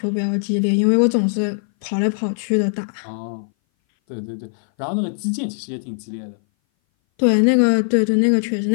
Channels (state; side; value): silent; right; 60 dB below the other